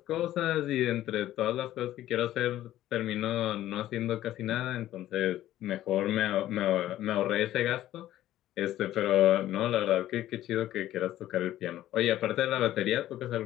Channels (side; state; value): right; quieter; 13.6 dB